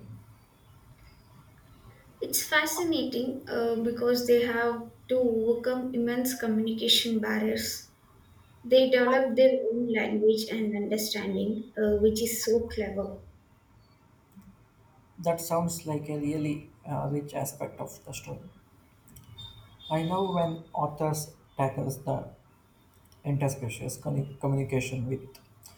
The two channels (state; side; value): identical; both; correlation 1.00